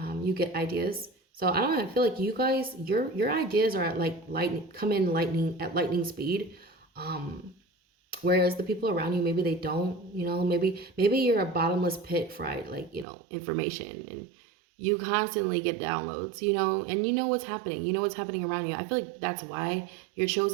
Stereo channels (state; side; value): drops out; left; at 13.1 s